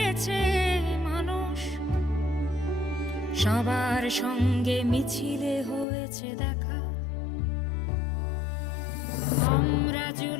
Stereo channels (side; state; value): right; drops out; at 5.9 s